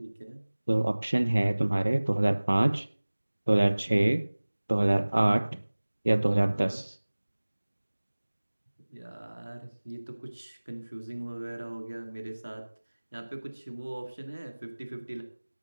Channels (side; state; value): both; inverted; correlation -1.00